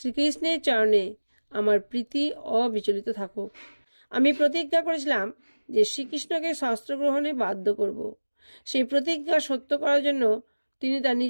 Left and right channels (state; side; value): inverted; both; correlation -1.00